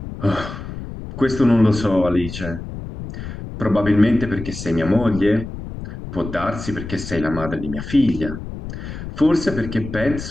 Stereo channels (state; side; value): noise; left; rumble, 9 dB below the sound